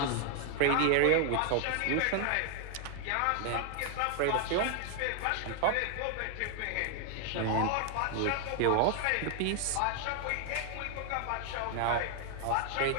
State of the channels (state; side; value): different; both; correlation 0.00